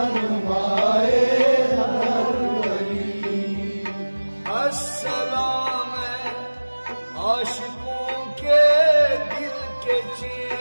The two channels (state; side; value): inverted; both; correlation -1.00